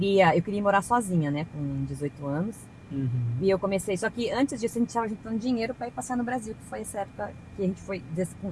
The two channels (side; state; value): both; identical; correlation 1.00